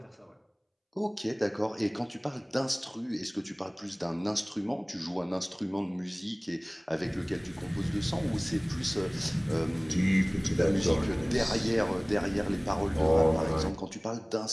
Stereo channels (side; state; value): both; identical; correlation 1.00